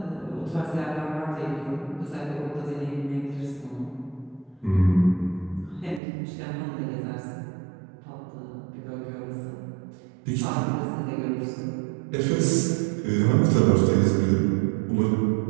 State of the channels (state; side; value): drops out; left; at 6.0 s